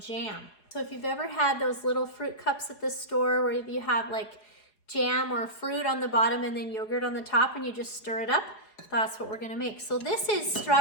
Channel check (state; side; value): late; right; 4.8 ms